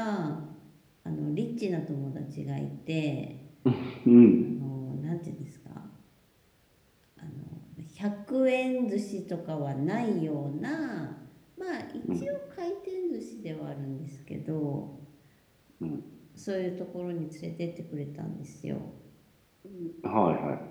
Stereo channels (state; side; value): identical; both; correlation 1.00